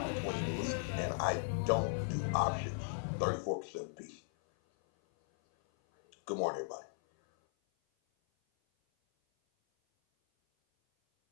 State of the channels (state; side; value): silent; right; 53 dB below the other